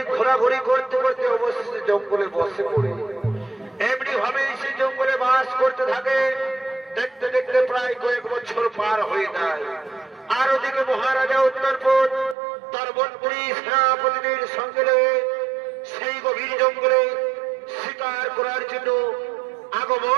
ঘোরাঘুরি করতে করতে অবশেষে জঙ্গলে বসে পড়ে এমনি ভাবে সে জঙ্গলে বাস করতে থাকে। দেখতে দেখতে প্রায় কয়েক বছর পার হয়ে যায়। আর ওদিকে মহারাজা উত্তরপদ তার মন্ত্রী সেনাপতিদের সঙ্গে সেই গভীর জঙ্গলে শিকার করার জন্য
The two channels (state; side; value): drops out; left; at 12.4 s